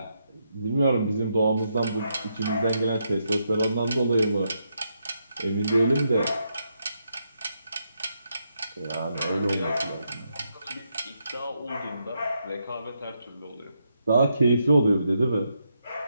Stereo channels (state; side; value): inverted; both; correlation -0.81